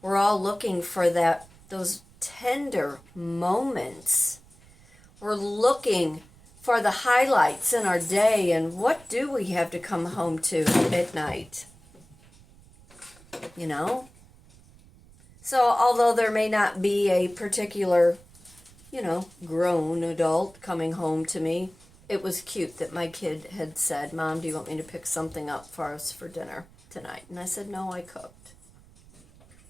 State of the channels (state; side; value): noise; right; rumble, 25 dB below the sound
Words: all looking for those tender moments. We're looking for the highlights in our day, and what do we have to come home to at night? You know? So although there may not be a particular, you know, grown adult coming home to me, it was cute that my kid had said, "Mom, do you want me to pick something up for us for dinner tonight?" And I said, "No, I cooked."